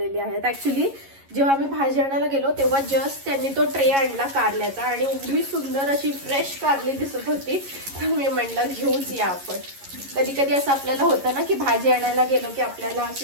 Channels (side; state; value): left; late; 11 ms